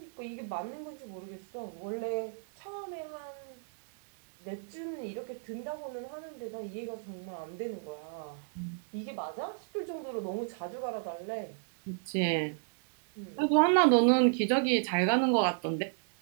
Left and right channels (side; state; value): left; silent; digital silence